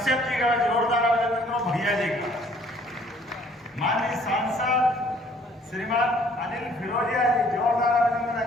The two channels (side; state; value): both; normal; correlation 0.59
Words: जी का जोरदार अभिनंदन करो, भैया जी का। माननीय सांसद श्रीमान अनिल फिरोजिया जी, जोरदार अभिनंदन